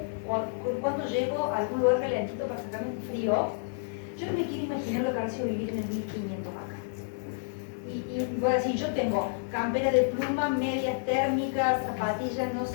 cuando llego a algún lugar calentito para sacarme un frío, yo no me quiero imaginar lo que ha sido vivir en el 1500 acá. Y voy a decir, yo tengo campera de pluma, medias térmicas, zapatillas, no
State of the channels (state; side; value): silent; right; digital silence